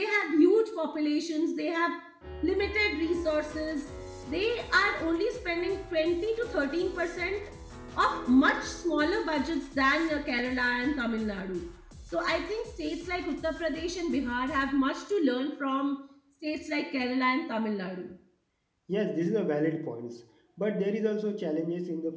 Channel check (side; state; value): both; identical; correlation 1.00